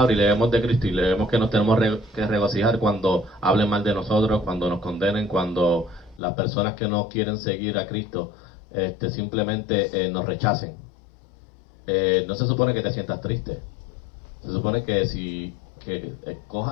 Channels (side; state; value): right; drops out; at 6.2 s